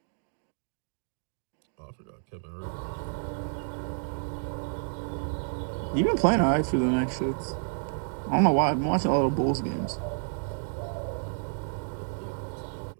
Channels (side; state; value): left; silent; digital silence